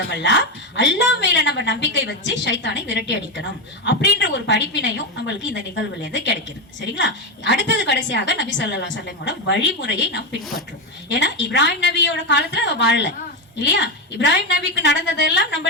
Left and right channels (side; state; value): both; normal; correlation 0.10